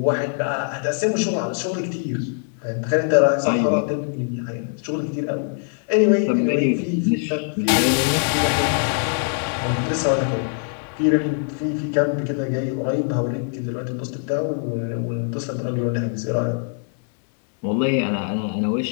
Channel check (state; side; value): silent; right; 58 dB below the other